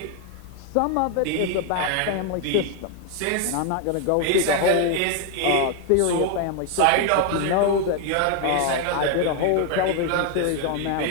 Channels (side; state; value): both; different; correlation 0.01